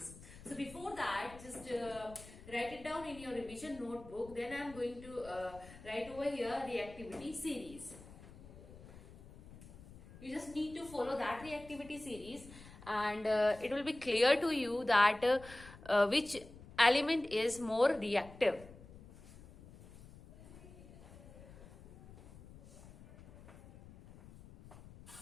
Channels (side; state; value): left; noise; rumble, 18 dB below the sound